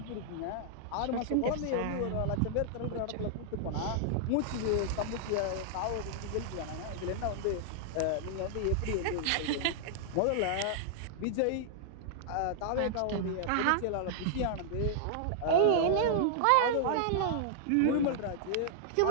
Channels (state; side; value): different; both; correlation -0.01